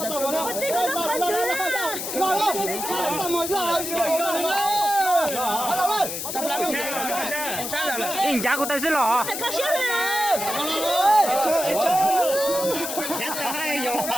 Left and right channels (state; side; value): noise; left; hiss, 5 dB below the sound